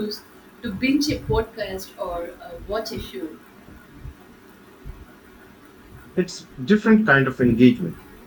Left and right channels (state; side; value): identical; both; correlation 1.00